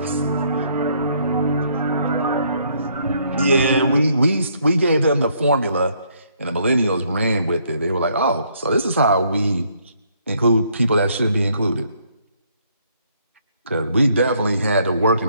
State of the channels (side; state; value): both; inverted; correlation -0.68